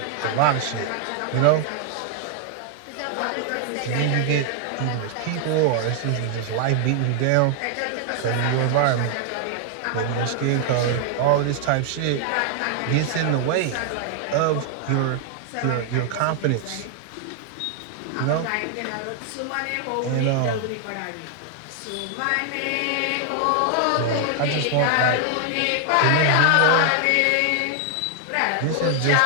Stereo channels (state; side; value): different; both; correlation 0.00